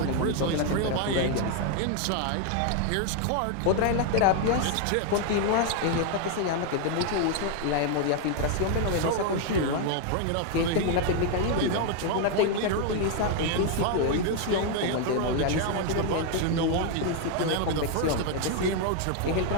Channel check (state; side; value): different; both; correlation 0.00